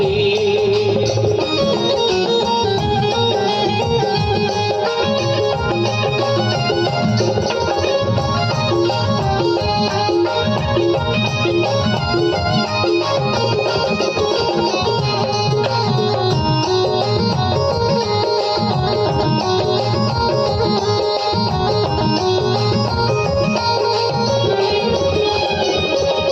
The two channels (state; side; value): identical; both; correlation 1.00